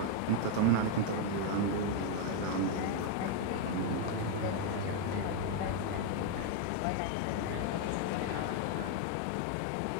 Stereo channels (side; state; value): both; different; correlation 0.01